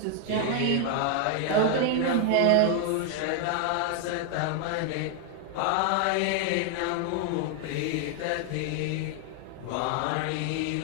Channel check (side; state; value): both; different; correlation 0.00